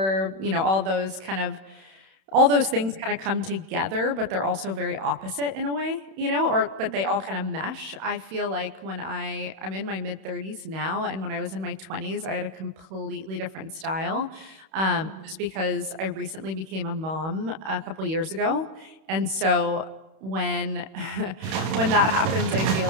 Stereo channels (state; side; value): late; left; 31 ms